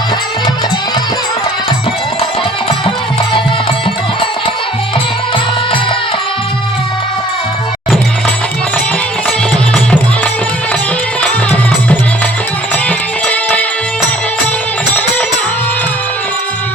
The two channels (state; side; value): normal; both; correlation 0.54